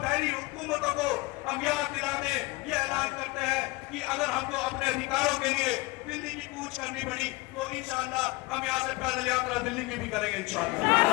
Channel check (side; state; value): right; quieter; 23.6 dB